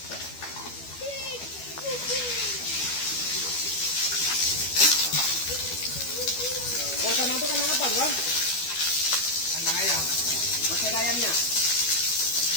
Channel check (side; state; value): right; late; 12 ms